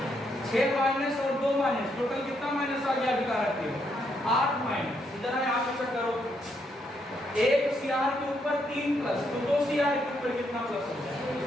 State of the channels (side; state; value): both; normal; correlation 0.76